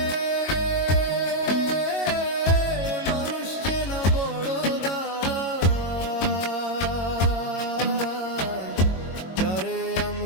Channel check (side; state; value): right; late; 22 ms